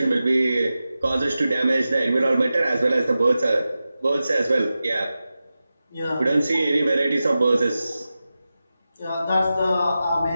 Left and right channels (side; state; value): both; inverted; correlation -0.93